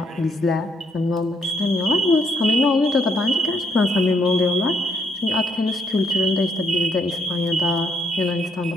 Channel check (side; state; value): both; normal; correlation 0.73